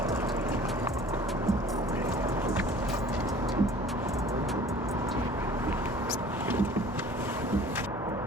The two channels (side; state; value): both; normal; correlation 0.47